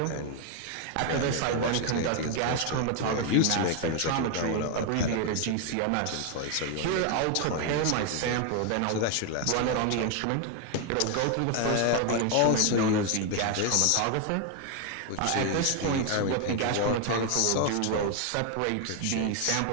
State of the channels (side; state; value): both; different; correlation 0.01